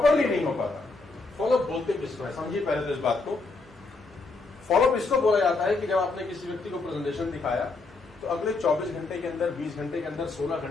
नहीं हो पाता। फॉलो बोलते किसको है, समझिए पहले तो इस बात को। फॉलो इसको बोला जाता है कि जब आपने किसी व्यक्ति को प्रेजेंटेशन दिखाया तो अगले 24 घंटे के अंदर, 20 घंटे के अंदर, 16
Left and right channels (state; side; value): quieter; right; 3.7 dB